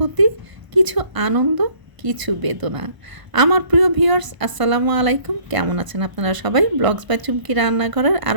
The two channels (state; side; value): late; left; 1.0 ms